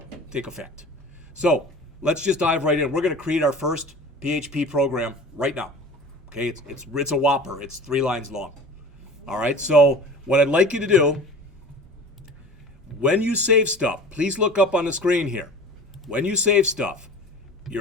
So let's just dive right in. We're going to create our first PHP program right now. Okay, it's a whopper. It's 3 lines long. All right. So what I'd like you to do, when you save stuff, please look up on the screen here. When you save stuff,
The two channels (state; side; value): normal; both; correlation 0.40